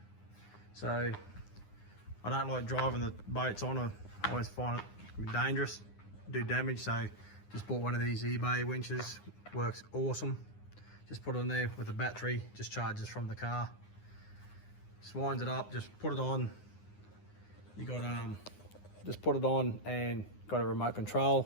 So I don't like driving the boats on. I always find it dangerous, do damage. So just bought one of these eBay winches. Works awesome. Just put it in there with a battery, just charges from the car. Just winds it up, just put it on. You got just put it on and got a remote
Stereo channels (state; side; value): late; right; 9.7 ms